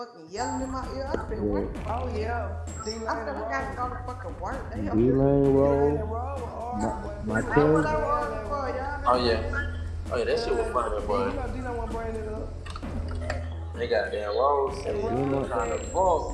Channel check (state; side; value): identical; both; correlation 1.00